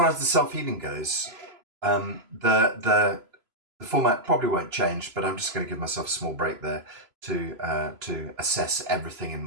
as the self-healing goes, the format probably won't change, but I'm just going to give myself a small break there to assess everything in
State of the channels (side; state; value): left; late; 3.0 ms